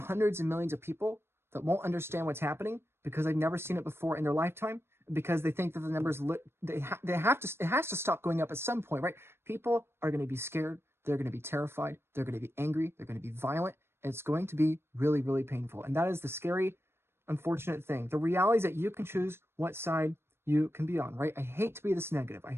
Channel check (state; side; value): late; left; 0.12 ms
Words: and millions of people that won't understand what's happening because they've never seen it before in their lifetime. because they think that the numbers, it has to stop going up at some point, right? People are going to be scared. They're going to be terrified. They're going to be angry. They're going to be violent. It's going to be really, really painful. And that is the scary, unfortunate thing. The reality is that you can choose what side you can be on, right? I hate to be this negative. I